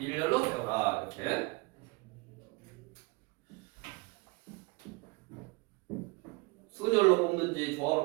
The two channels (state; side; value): quieter; left; 25.3 dB